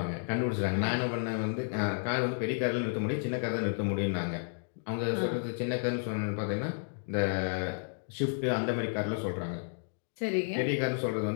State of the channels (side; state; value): right; silent; digital silence